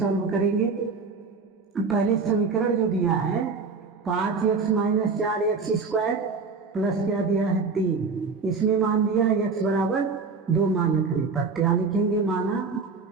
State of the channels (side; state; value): left; quieter; 4.7 dB